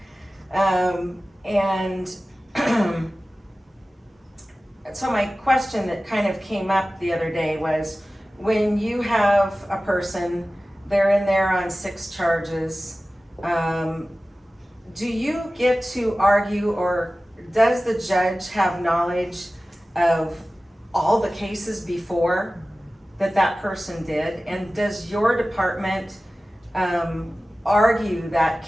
And so my question that kind of came up the other day was, when you have a person, they're in there on 6 charges, do you get to argue, or does the judge have knowledge of all the cases before that person did? And does your department argue that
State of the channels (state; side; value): normal; both; correlation 0.96